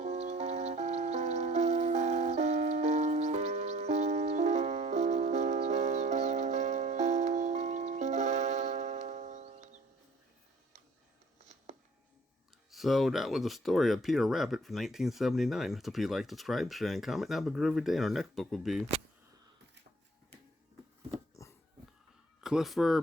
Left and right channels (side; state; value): both; normal; correlation 0.56